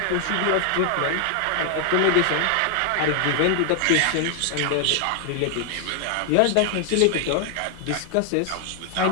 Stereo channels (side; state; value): both; different; correlation 0.00